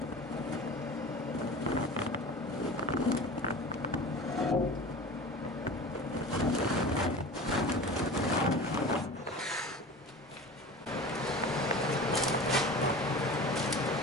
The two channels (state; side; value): normal; both; correlation 0.35